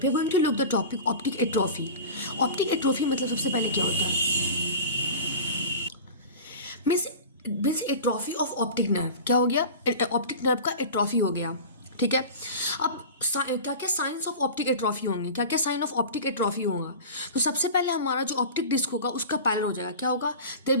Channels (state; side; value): inverted; both; correlation -0.34